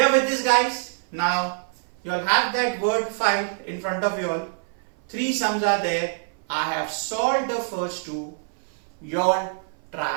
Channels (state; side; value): silent; left; 57 dB below the other